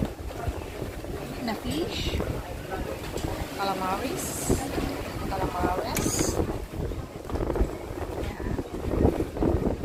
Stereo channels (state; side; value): identical; both; correlation 1.00